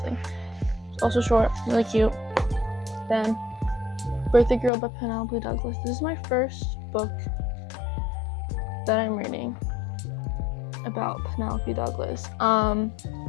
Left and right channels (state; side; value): drops out; right; at 4.7 s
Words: It's also short, really cute. Then Birthday Girl by Penelope Douglas. This is my first book that I'm reading about Penelope Douglas.